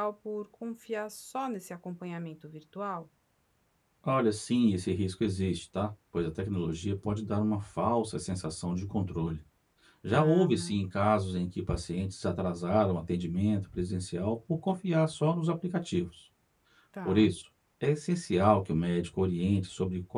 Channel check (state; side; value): identical; both; correlation 1.00